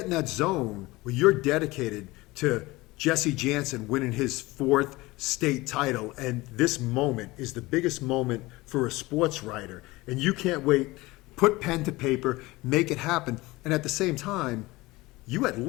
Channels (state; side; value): quieter; right; 20.9 dB